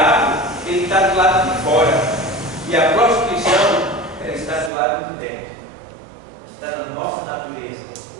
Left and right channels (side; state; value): left; drops out; at 4.7 s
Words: ele está do lado de fora, e a prostituição, ela está do lado de dentro. Está na nossa natureza.